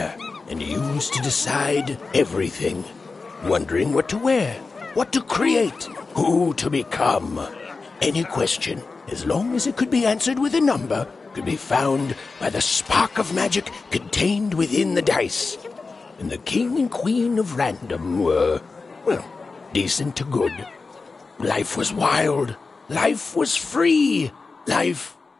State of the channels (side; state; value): right; quieter; 4.1 dB